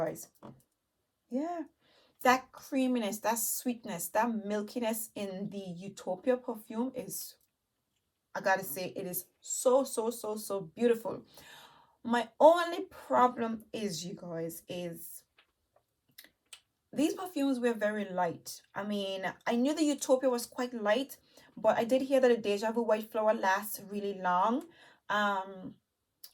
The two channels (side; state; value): both; identical; correlation 1.00